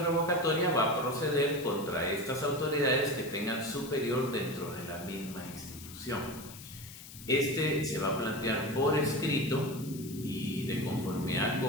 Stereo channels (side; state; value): left; noise; hiss, 15 dB below the sound